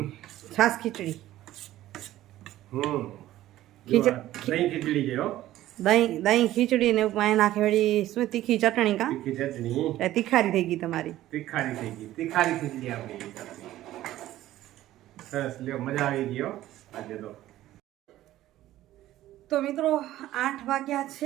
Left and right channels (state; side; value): quieter; left; 14.4 dB